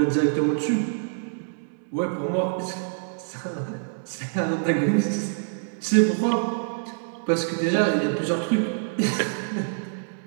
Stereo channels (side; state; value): left; silent; digital silence